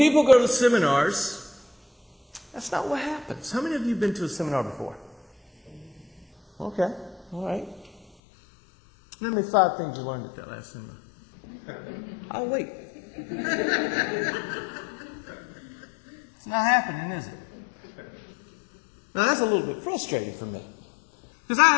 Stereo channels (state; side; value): drops out; right; at 8.1 s